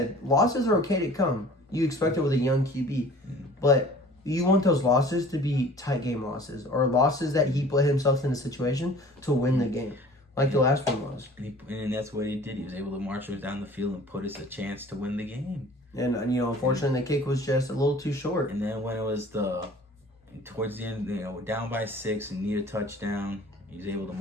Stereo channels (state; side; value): normal; both; correlation 0.47